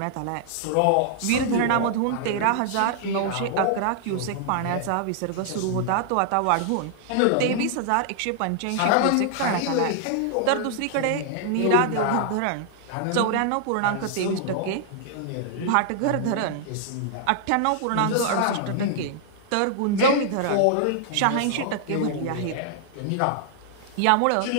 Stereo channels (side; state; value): both; different; correlation -0.01